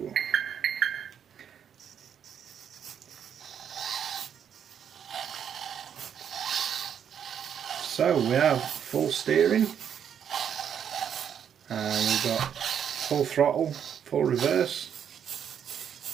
So we have full steering, and we've got full throttle, full reverse,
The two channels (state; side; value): quieter; left; 8.5 dB